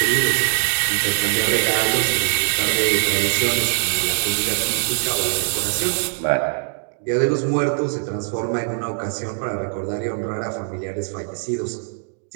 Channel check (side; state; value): left; silent; digital silence